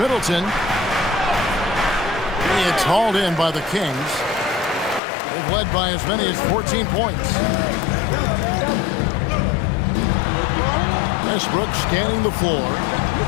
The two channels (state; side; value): drops out; right; at 5.0 s